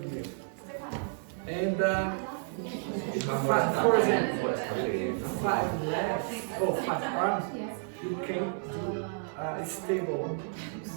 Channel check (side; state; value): left; silent; 57 dB below the other